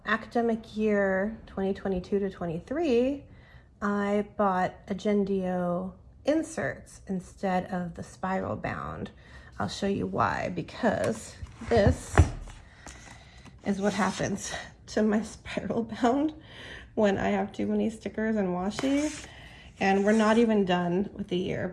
academic year 2022 to 23, I bought Agendio inserts instead of the spiral bound. I'll show you why, because this is what happens to my spiral bound when I have too many stickers and washi. And we're not even done with the year,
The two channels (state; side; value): identical; both; correlation 1.00